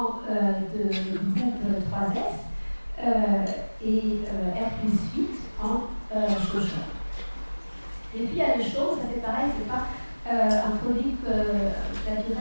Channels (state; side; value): inverted; both; correlation -1.00